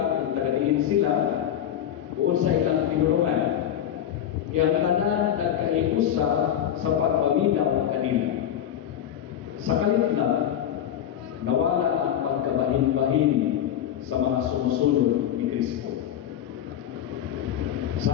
kung tagadiin sila o sa ilang pinulungan. Yang tanan nahiusa sa pagpaminaw kanila. Sa kalitla, nawala ang pagkabahin-bahin sa mga sumusunod ni Kristo.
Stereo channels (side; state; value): right; quieter; 10.4 dB